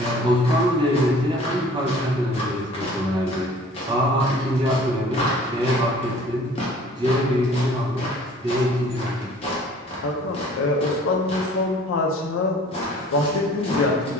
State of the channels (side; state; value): both; normal; correlation 0.50